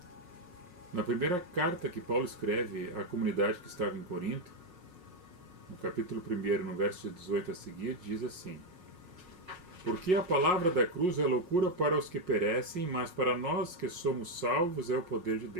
Na primeira carta que Paulo escreve à comunidade que estava em Corinto, no capítulo 1, no verso 18 a seguir, diz assim: Porque a palavra da cruz é loucura para os que perecem, mas para nós que somos salvos é o poder de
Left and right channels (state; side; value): late; left; 5.6 ms